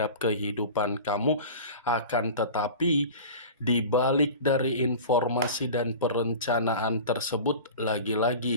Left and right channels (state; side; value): inverted; both; correlation -0.36